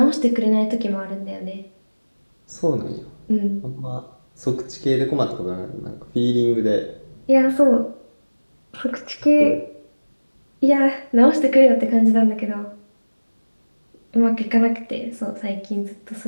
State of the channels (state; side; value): inverted; both; correlation -1.00